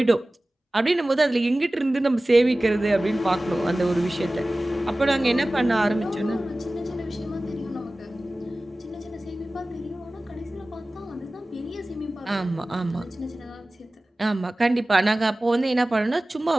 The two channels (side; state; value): both; normal; correlation 0.97